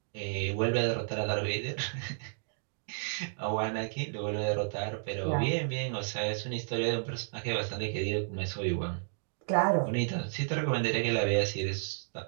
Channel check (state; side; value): silent; left; digital silence